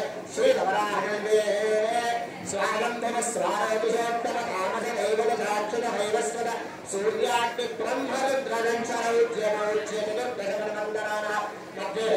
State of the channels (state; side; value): identical; both; correlation 1.00